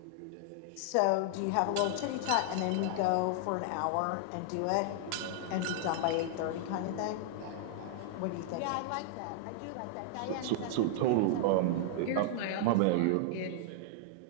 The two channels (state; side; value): different; both; correlation -0.01